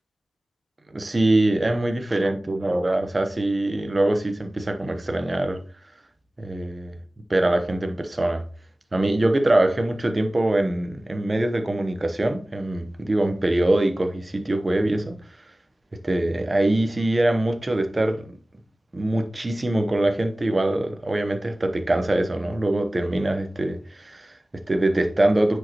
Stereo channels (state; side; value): normal; both; correlation 0.98